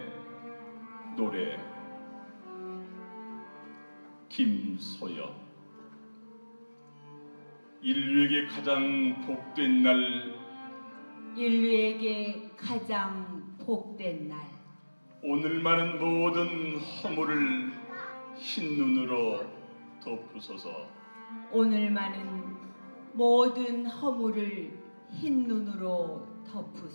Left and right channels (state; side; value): inverted; both; correlation -1.00